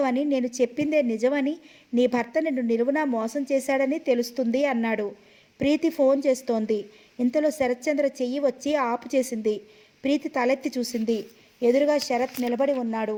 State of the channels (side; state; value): both; identical; correlation 1.00